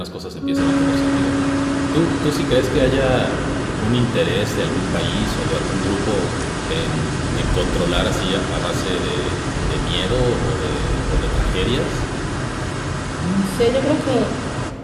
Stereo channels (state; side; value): identical; both; correlation 1.00